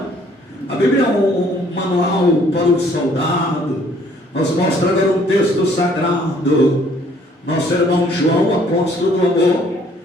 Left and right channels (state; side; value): normal; both; correlation 0.61